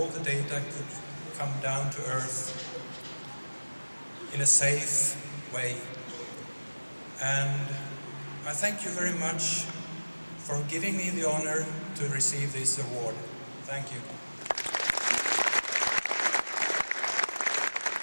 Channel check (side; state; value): both; inverted; correlation -1.00